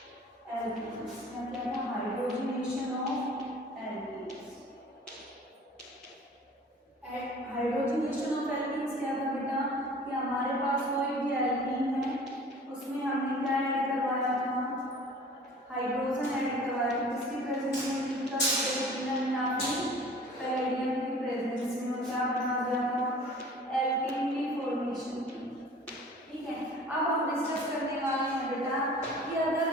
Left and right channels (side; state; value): both; normal; correlation 0.46